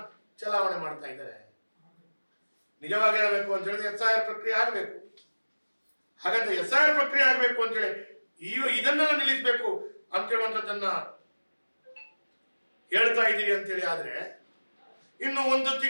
ಚಲಾವಣೆ ಮಾಡ್ತಾ ಇದ್ದಾರೆ. ನಿಜವಾಗಿ ಹೇಳಬೇಕು ಅಂತ ಹೇಳಿದ್ರೆ SIR ಪ್ರಕ್ರಿಯೆ ಆಗಬೇಕು. ಹಾಗಾದ್ರೆ SIR ಪ್ರಕ್ರಿಯೆ ಆಗಬೇಕು ಅಂತ ಹೇಳಿ ಇದನ್ನೆಲ್ಲ ನಿಲ್ಲಿಸಬೇಕು ಅಂತ ಹೇಳುವಂಥದ್ದನ್ನ ಹೇಳ್ತಾ ಇದ್ದೀರಿ ಅಂತೇಳಿ ಆದ್ರೆ ಇನ್ನು 1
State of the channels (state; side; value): inverted; both; correlation -1.00